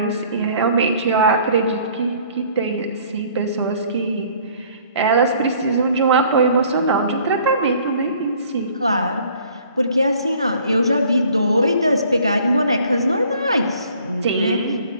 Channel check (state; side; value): inverted; both; correlation -0.56